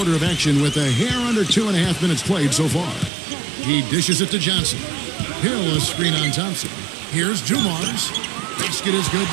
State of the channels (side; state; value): left; drops out; at 3.1 s